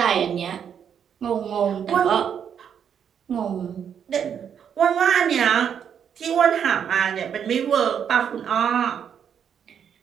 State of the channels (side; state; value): left; quieter; 8.1 dB